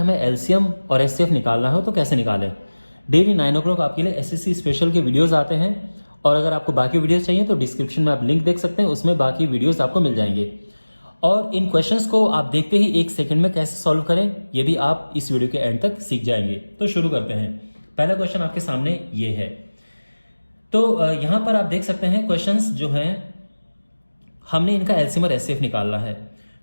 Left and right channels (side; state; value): both; inverted; correlation -1.00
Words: एलसीएम और एचसीएफ निकालना हो तो कैसे निकालें। डेली 9 o'clock आपके लिए एसएससी स्पेशल के वीडियोज आते हैं और अगर आपको बाकी वीडियोज चाहिए तो डिस्क्रिप्शन में आप लिंक देख सकते हैं, उसमें बाकी वीडियोज आपको मिल जाएंगे। और इन क्वेश्चंस को आप देखते ही 1 सेकंड में कैसे सॉल्व करें ये भी आप इस वीडियो के एंड तक सीख जाएंगे। तो शुरू करते हैं। पहला क्वेश्चन आपके सामने ये है। तो यहां पर आप देख सकते हैं क्वेश्चंस जो हैं हमने इनका एलसीएम और एचसीएफ निकालना है।